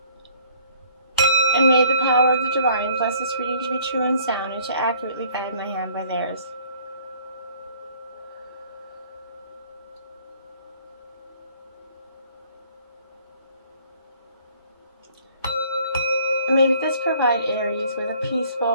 And may the power of the divine bless this reading to be true and sound and to accurately guide my hand by theirs. And may this provide Aries with a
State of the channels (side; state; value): both; inverted; correlation -0.58